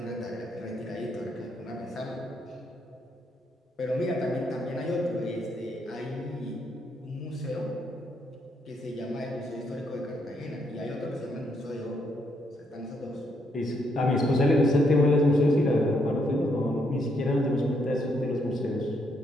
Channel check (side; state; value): both; normal; correlation 0.75